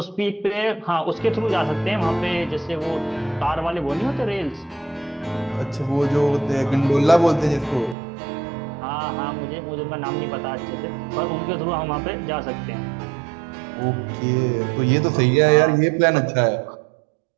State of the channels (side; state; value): left; drops out; at 8.0 s